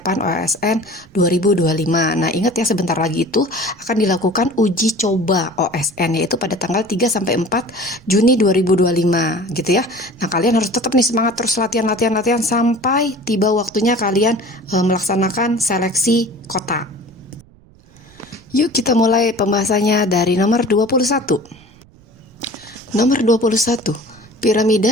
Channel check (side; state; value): right; noise; rumble, 27 dB below the sound